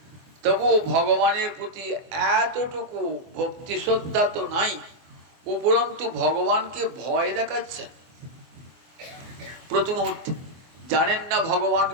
তবু ভগবানের প্রতি এতটুকু ভক্তি শ্রদ্ধা তো নাই, উপরন্তু ভগবানকে ভয় দেখাচ্ছেন। প্রতি মুহূর্তে জানেন না ভগবান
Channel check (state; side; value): late; left; 24 ms